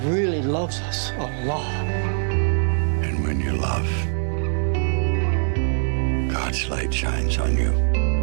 really loves us a lot. And when you love, God's light shines on you.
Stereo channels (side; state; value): left; silent; digital silence